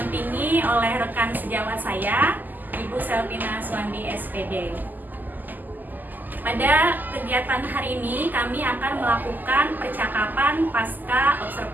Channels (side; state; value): left; late; 0.086 ms